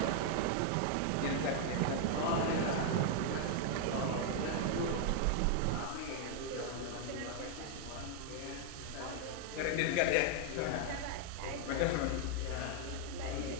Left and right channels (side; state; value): both; different; correlation 0.00